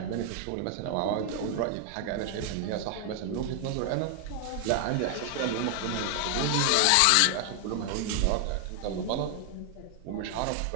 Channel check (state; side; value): different; both; correlation 0.00